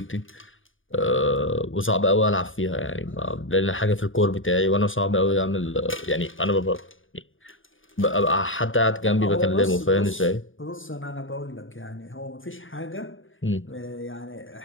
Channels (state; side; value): late; right; 0.58 ms